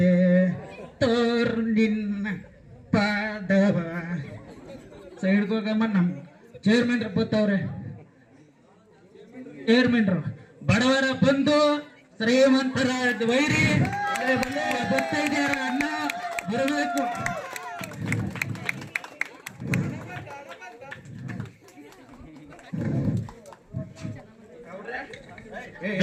ತೋರ್ ನಿನ್ನ ಪಾದವ ಸೈಡ್ಗೋಗಮ್ಮ. ನಮ್ ಚೇರ್ಮನ್ರು ಬತ್ತವ್ರೆ. ಚೇರ್ಮನ್ರು ಬಡವರ ಬಂದು ಶ್ರೀಮಂತರ ವೈರಿ ಬರ್ತಾ ಇದ್ದಾರ. ಅನ್ನ ಬರಬೇಕು.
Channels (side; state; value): both; identical; correlation 1.00